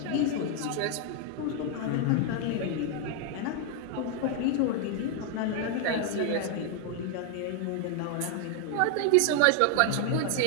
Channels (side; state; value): both; different; correlation 0.00